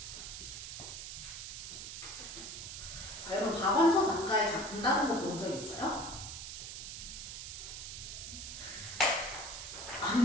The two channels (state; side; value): noise; right; hiss, 8 dB below the sound